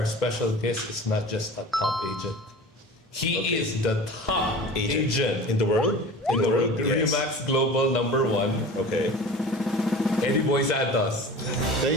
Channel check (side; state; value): both; normal; correlation 0.37